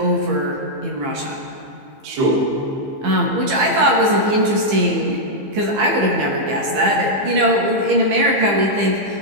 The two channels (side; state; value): left; late; 15 ms